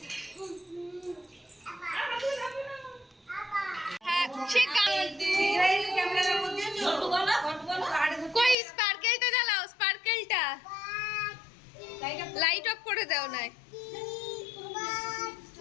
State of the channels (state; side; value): drops out; right; at 8.6 s